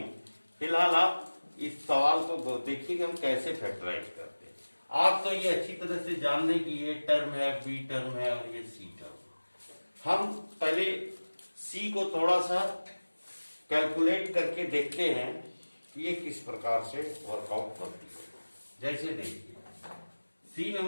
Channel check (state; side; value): inverted; both; correlation -1.00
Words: फिलहाल आप इस सवाल को देखिए कि हम कैसे फैक्टराइज करते हैं। आप तो ये अच्छी तरह से जान लें कि ये टर्म है, बी टर्म है और ये सी टर्म। हम पहले सी को थोड़ा सा कैलकुलेट करके देखते हैं कि ये किस प्रकार से वर्कआउट करती है। जैसे देखिए सी